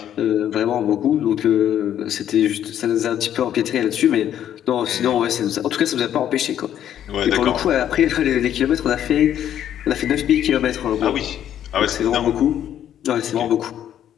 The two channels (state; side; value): quieter; right; 10.5 dB